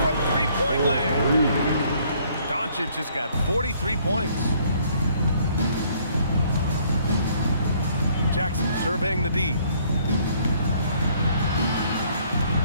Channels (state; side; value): inverted; both; correlation -0.63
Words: from three-point land. Doncic has got 43 points. Jackson surveying the D.